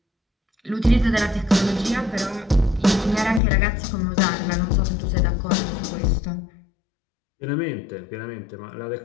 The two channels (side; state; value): right; drops out; at 3.4 s